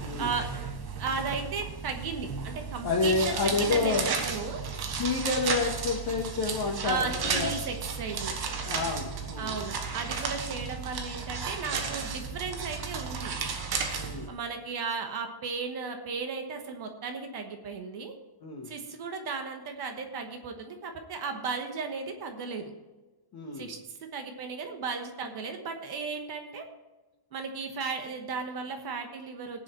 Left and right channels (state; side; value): late; right; 1.1 ms